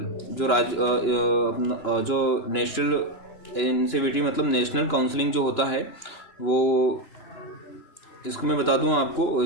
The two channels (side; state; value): right; late; 3.0 ms